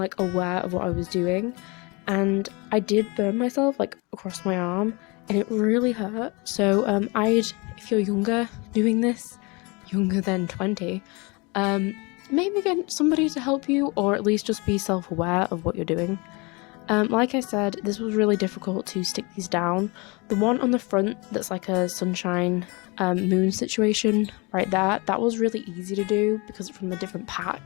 aware of what I was doing, and I did burn myself like across my arm and it really hurt. So if you're younger doing this, younger than 20, maybe get somebody to help you, or at least just be self-aware of what you're doing. Like I said, this was really difficult to stick these down. The one on the front that's like a sunshine moon situation right there, that was really easy to do because it's from a different pack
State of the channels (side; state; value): right; quieter; 28.0 dB